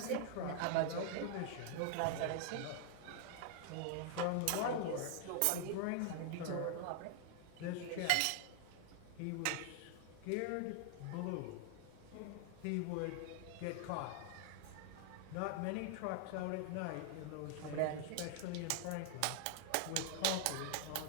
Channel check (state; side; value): different; both; correlation 0.00